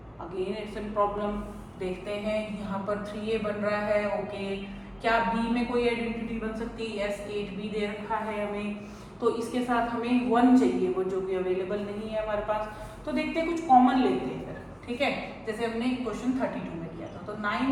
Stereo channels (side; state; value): both; identical; correlation 1.00